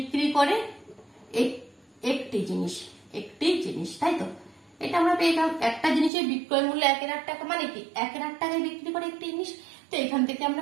করে একটি জিনিস, তাই তো? এটা আমরা পেয়ে গেলাম, একটা জিনিসের বিক্রয় মূল্য 1/8 টাকা, মানে কি 1/8 টাকায় বিক্রি করে একটি জিনিস। তো এখান থেকে আমরা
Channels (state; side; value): drops out; left; at 6.1 s